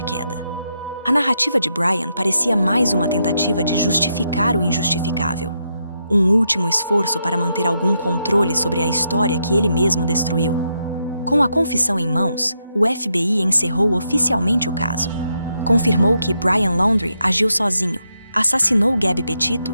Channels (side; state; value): both; inverted; correlation -0.81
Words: queda. A narrativa de Brian parecia mais uma tentativa de justificar o injustificável. Um último esforço para manter algum controle sobre a história que ele mesmo destruiu. Com a confissão em mãos, o FBI encerrou oficialmente o caso. Confirmou que Brian Laundrie agiu sozinho, assassinou Gabby